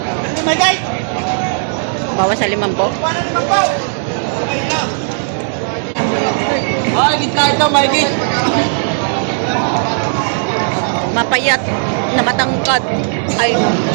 My guys. Bawas sa 5 po. Ay, gitna ito, my guys. Mapayat na matangkad. Ay.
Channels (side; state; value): left; silent; digital silence